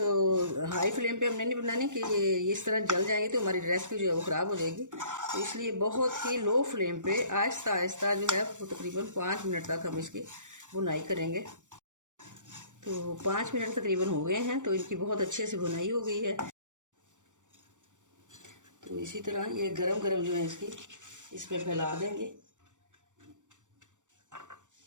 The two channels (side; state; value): left; late; 0.86 ms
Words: हाई फ्लेम पे हमने नहीं बनानी कि ये इस तरह जल जाएंगे तो हमारी रेसिपी जो है वो ख़राब हो जाएगी। तो इसलिए बहुत ही लो फ्लेम पे आहिस्ता आहिस्ता जो है वो तकरीबन 5 मिनट तक हम इसकी बुनाई करेंगे। तो 5 मिनट तकरीबन हो गए हैं, तो इनकी बहुत अच्छे से बुनाई हो गई है। तो इसी तरह ये गरम गरम जो है इसकी इसमें फैला देंगे।